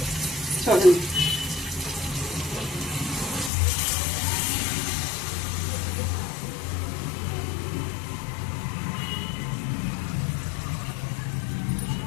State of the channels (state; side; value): drops out; right; at 3.5 s